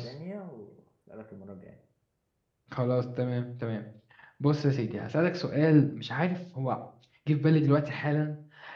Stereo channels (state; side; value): identical; both; correlation 1.00